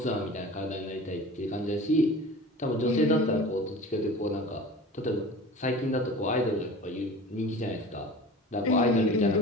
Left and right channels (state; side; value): normal; both; correlation 0.38